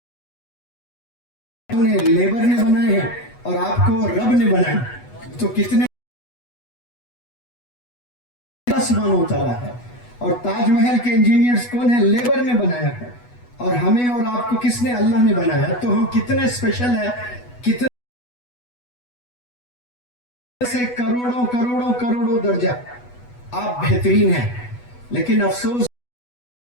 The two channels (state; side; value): late; right; 8.2 ms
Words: Labour نے بنائے ہیں اور آپ کو رب نے بنایا, تو کتنے سبحانہ و تعالیٰ ہے. اور تاج محل کے انجینئرز کون ہیں؟ لیبر نے بنایا ہے. اور ہمیں اور آپ کو کس نے؟ اللہ نے بنایا. تو ہم کتنے اسپیشل ہیں, کتنے سے کروڑوں کروڑوں کروڑوں درجہ آپ بہترین ہیں. لیکن افسوس